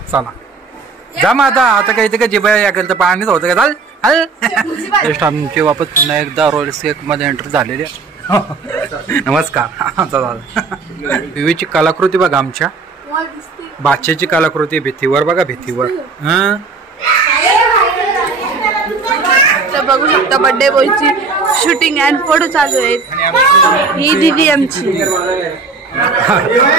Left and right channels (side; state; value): left; quieter; 4.4 dB